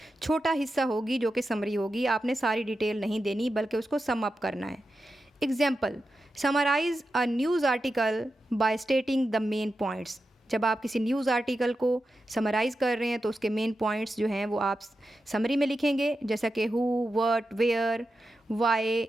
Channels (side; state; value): both; normal; correlation 0.90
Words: छोटा हिस्सा होगी जो कि समरी होगी। आपने सारी डिटेल नहीं देनी बल्कि उसको सम अप करना है। Example, summarise a news article by stating the main points. जब आप किसी न्यूज़ आर्टिकल को समराइज़ कर रहे हैं तो उसके मेन पॉइंट्स जो हैं वो आप समरी में लिखेंगे, जैसा कि who, what, where, why